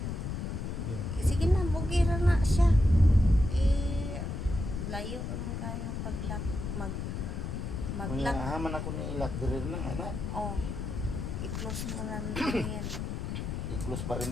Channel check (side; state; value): left; noise; rumble, 4 dB below the sound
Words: Sige na, bugira na siya. Layo lang kayo paglak, maglak. Haman ako ni ilak diri nang anak. Oh, i-close mo lang yan. I-close